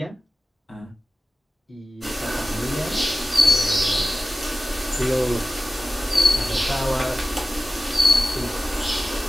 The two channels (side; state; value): both; normal; correlation 0.96